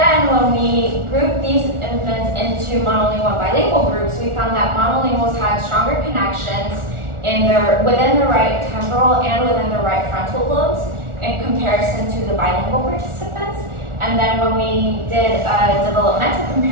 when we grouped these infants into monolingual and bilingual groups, we found that monolinguals had stronger connections within the right temporal and within the right frontal lobes in comparison to the bilingual participants. And then when we did a developmental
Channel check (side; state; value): left; late; 1.4 ms